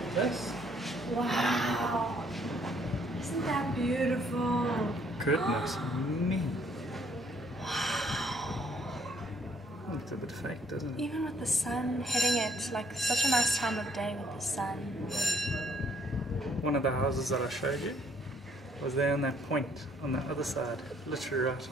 this. Wow! Isn't that beautiful? Goodness me. Wow! Look at a bit fake, doesn't it? Even with the sun hitting it, like such a nice time of day with the sun. One of the houses that I showed you was there on that point on the other side, literally right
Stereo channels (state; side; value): normal; both; correlation 0.66